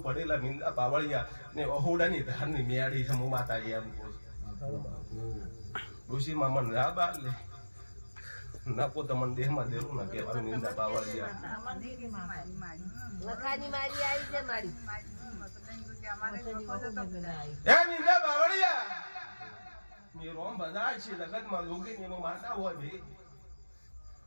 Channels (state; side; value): inverted; both; correlation -1.00